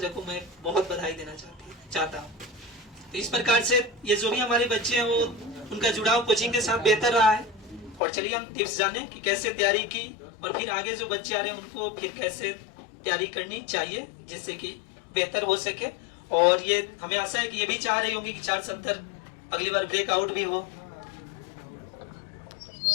को मैं बहुत बधाई देना चाहता हूँ। तो इस प्रकार से ये जो भी हमारे बच्चे हैं वो उनका जुड़ाव कोचिंग के साथ बेहतर रहा है। और चलिए हम टिप्स जाने कि कैसे तैयारी की और फिर आगे जो बच्चे आ रहे हैं उनको फिर कैसे तैयारी करनी चाहिए जिससे कि बेहतर हो सके। और ये हमें आशा है कि ये भी चाह रही होंगी कि 470 अगली बार ब्रेकआउट भी हो।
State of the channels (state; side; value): drops out; right; at 8.0 s